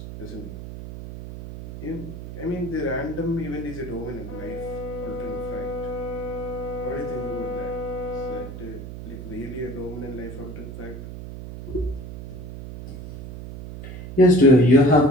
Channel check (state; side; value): noise; right; hum, 10 dB below the sound